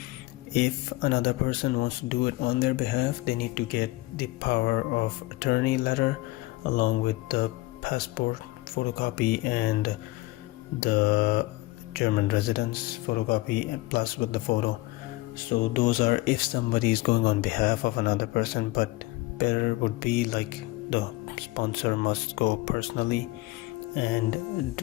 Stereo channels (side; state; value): right; quieter; 20.2 dB